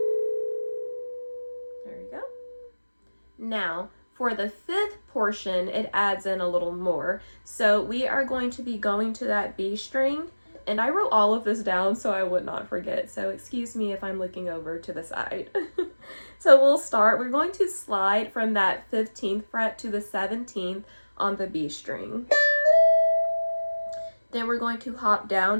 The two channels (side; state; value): both; inverted; correlation -1.00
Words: we go. Now, for the 5th portion, it adds in a little more. So we are going to be going to that B string, and I wrote all of this down so I would not forget. So excuse me if I'm looking over to the side. So we'll start. We're going to slide from that 15th fret to the 17th on the B string. Then we're going to hop